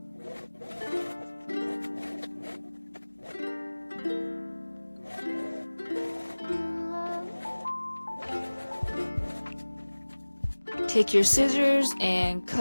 Take your scissors and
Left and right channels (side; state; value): both; inverted; correlation -1.00